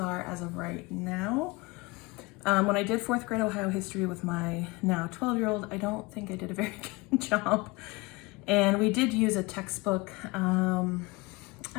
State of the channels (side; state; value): right; quieter; 24.2 dB